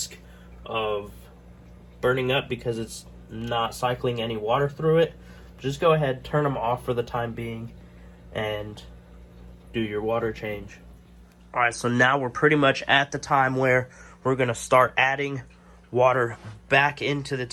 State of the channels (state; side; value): identical; both; correlation 1.00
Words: of burning up because it's not cycling any water through it, just go ahead, turn them off for the time being, and do your water change. Alright, so now we're pretty much at the time where we're going to start adding water back into the